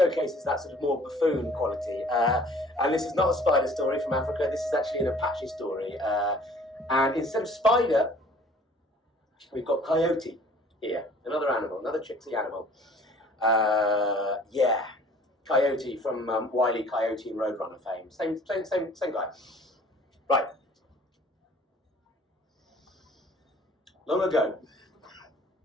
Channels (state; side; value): normal; both; correlation 0.52